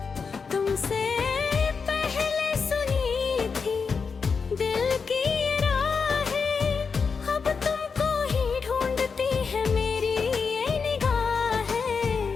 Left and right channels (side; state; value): right; quieter; 5.4 dB